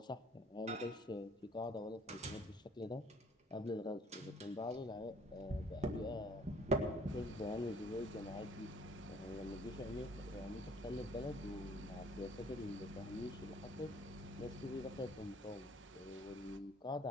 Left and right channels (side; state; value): both; normal; correlation 0.58